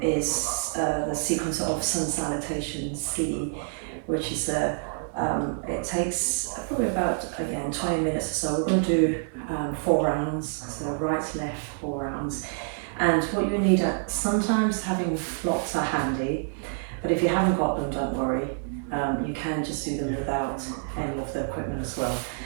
is the sequence of sun salutation C, which is it takes probably about, again, 20 minutes or so. We're going to do 4 rounds, so right, left, 4 rounds. And what you need, sometimes having blocks are handy, but if you haven't got them, don't worry. You can just do them without any of the equipment as well.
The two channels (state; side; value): silent; left; digital silence